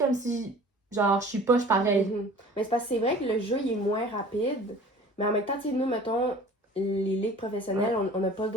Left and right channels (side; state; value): both; normal; correlation 0.46